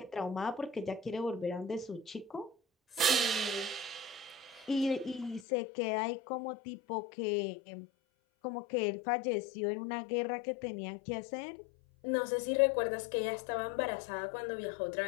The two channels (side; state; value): right; drops out; at 5.5 s